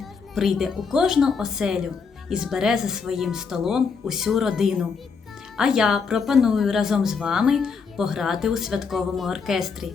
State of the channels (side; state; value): right; quieter; 5.5 dB